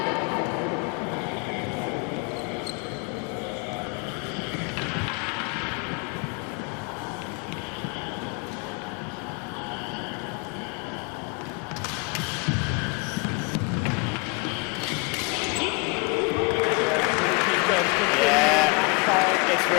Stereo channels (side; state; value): right; quieter; 30.6 dB